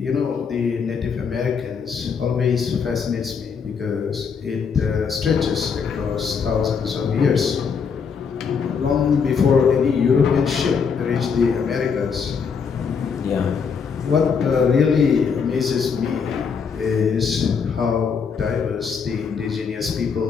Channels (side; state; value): right; quieter; 6.1 dB